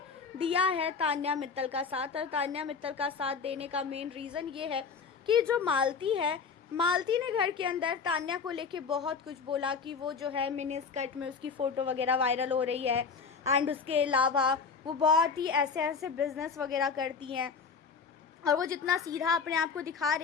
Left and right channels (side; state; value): right; quieter; 5.4 dB